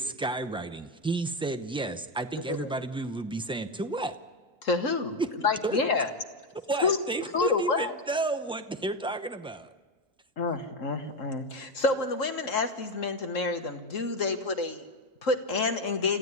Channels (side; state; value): both; normal; correlation 0.11